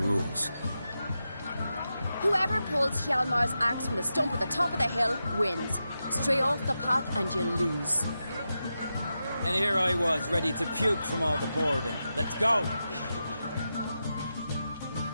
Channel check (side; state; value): both; inverted; correlation -0.89